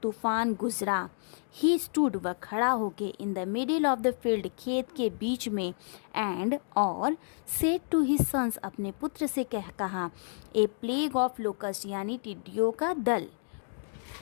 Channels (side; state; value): right; silent; digital silence